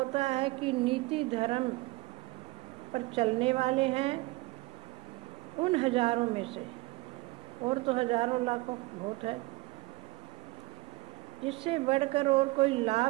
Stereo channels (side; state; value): left; quieter; 22.4 dB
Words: है कि नीति धर्म पर चलने वाले हैं उन हजारों में से, और तो हजारों लाखों बहुत है, जिससे बढ़कर और कोई